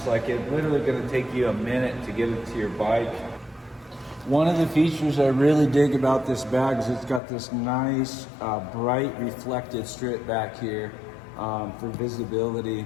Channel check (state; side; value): drops out; right; at 7.2 s